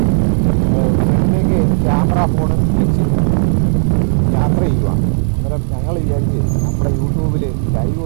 ഫ്രണ്ടിലേക്ക് ക്യാമറ ഫോൺ വെച്ച് യാത്ര ചെയ്യുക. അന്നേരം ഞങ്ങൾ വിചാരിച്ച് നമ്മുടെ യൂട്യൂബിൽ ലൈവ്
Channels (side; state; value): left; silent; digital silence